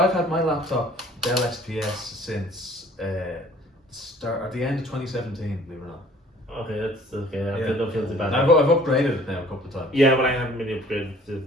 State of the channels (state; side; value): normal; both; correlation 0.53